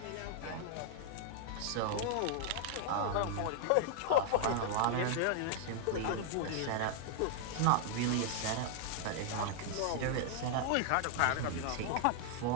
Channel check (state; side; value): different; both; correlation 0.00